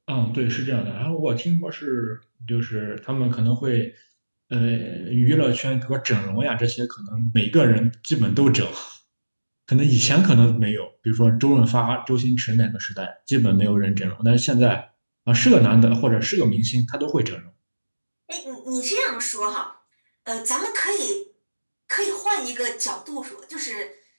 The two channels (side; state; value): both; inverted; correlation -1.00